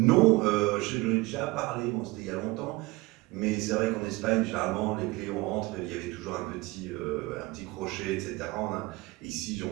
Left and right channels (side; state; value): left; quieter; 22.2 dB